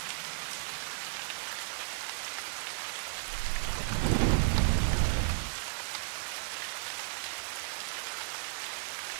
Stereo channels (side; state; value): left; silent; digital silence